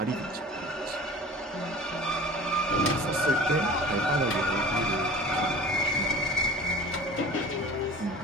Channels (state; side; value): normal; both; correlation 0.41